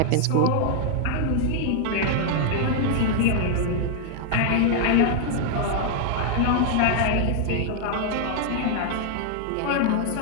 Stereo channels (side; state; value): both; different; correlation 0.00